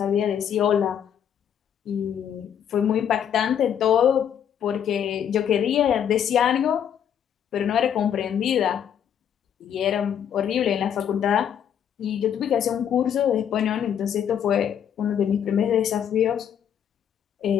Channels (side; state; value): right; quieter; 9.0 dB